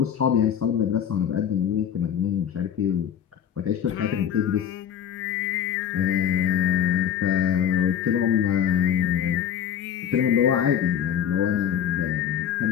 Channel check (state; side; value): quieter; right; 9.0 dB